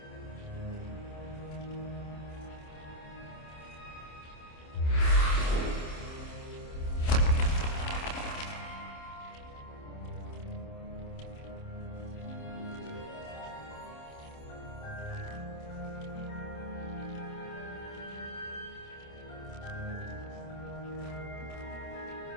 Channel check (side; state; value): right; late; 27 ms